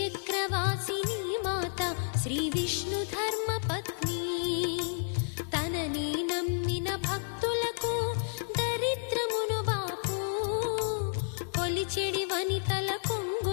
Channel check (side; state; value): right; silent; 57 dB below the other